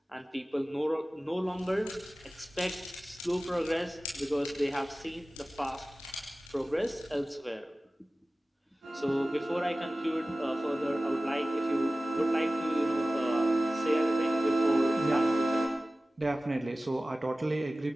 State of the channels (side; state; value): both; normal; correlation 0.96